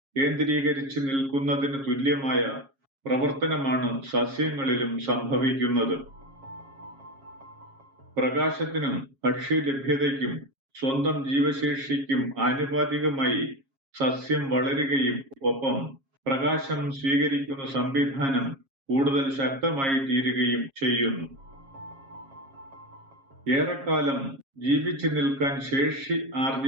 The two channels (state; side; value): late; left; 7.4 ms